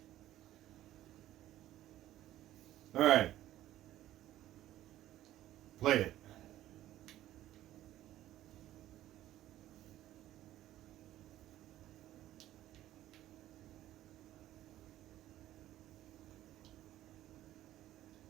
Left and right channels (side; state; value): left; quieter; 13.8 dB